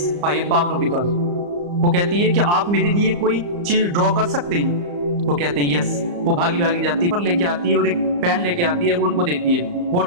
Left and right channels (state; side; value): late; left; 34 ms